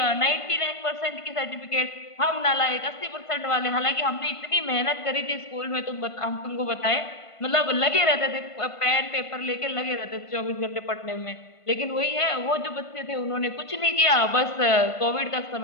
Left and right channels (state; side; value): late; right; 1.5 ms